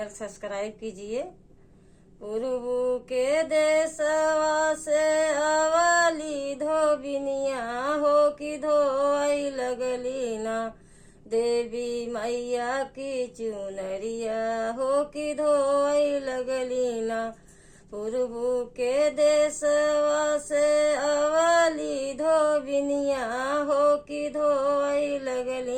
सब्सक्राइब कीजिए। पूर्व के देशवा से अवली धोबिनिया हो कि धोई लगली ना, देवी मैया की चुनरिया हो कि धोई लगली ना। पूर्व के देशवा से अवली धोबिनिया हो कि धोई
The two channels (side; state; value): both; identical; correlation 1.00